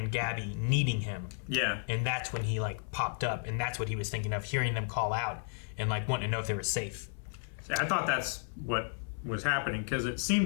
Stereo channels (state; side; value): silent; right; 56 dB below the other